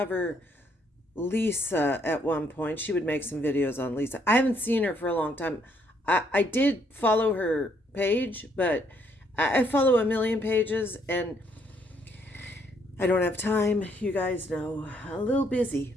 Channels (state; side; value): normal; both; correlation 0.70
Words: Lisa at one point. She would make some videos on Lisa. I haven't seen her for a long time. I did follow her page, but I follow a million pages and I don't have time. You guys know, a little busy.